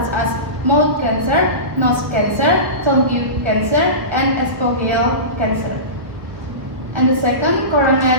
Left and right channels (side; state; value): left; late; 1.1 ms